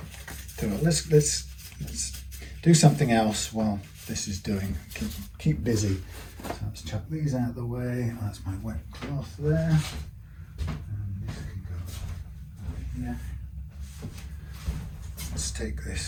So let's do something else while this is doing. Keep busy. So let's chuck these out of the way. That's my wet cloth there. And this can go here. Let's take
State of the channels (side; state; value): both; identical; correlation 1.00